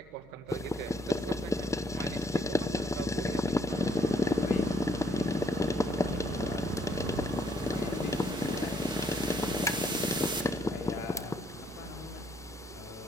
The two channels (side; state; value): right; noise; hum, 24 dB below the sound